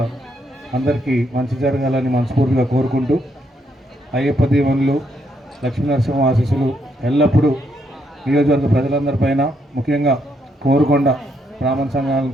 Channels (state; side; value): normal; both; correlation 0.76